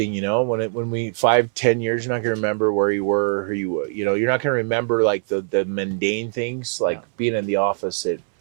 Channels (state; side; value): silent; left; 64 dB below the other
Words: you know. When we 5-10 years, you're not gonna remember where you were, who you were. You know, you're not gonna remember like the mundane things, like being in the office.